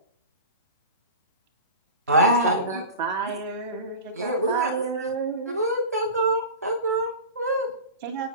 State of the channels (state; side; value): inverted; both; correlation -0.31